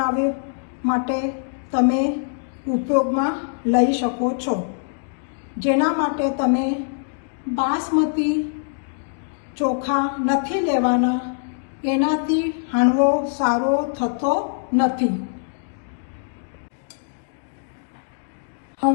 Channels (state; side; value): silent; right; digital silence